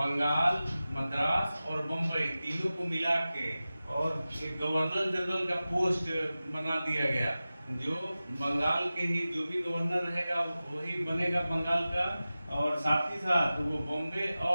मद्रास और बम्बई तीनों को मिला के और एक गवर्नर जनरल का पोस्ट बना दिया गया। जो बंगाल के ही जो भी गवर्नर रहेगा वही बनेगा बंगाल का, और साथ ही साथ वो बॉम्बे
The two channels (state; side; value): inverted; both; correlation -0.96